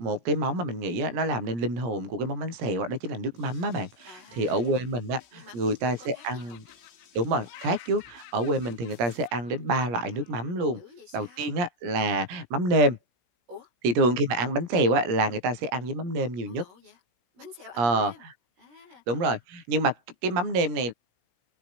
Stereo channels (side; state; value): left; late; 17 ms